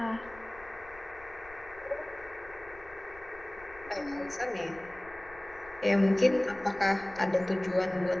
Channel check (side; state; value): left; noise; rumble, 21 dB below the sound